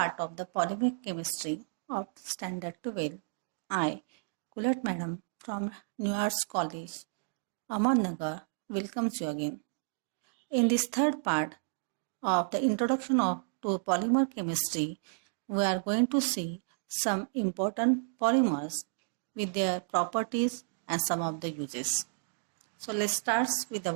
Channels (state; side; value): silent; left; digital silence